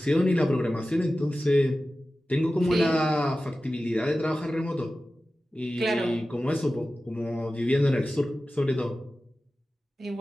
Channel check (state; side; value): normal; both; correlation 0.95